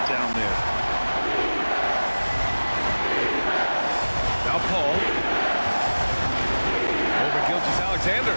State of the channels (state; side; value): inverted; both; correlation -1.00